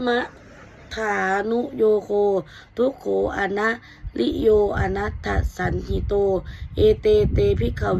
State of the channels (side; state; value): both; identical; correlation 1.00